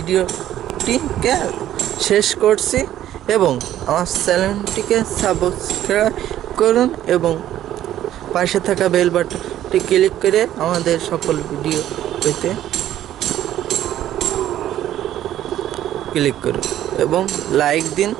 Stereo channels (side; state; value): left; quieter; 12.3 dB